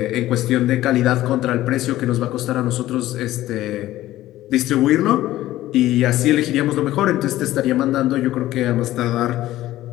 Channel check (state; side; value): quieter; right; 15.1 dB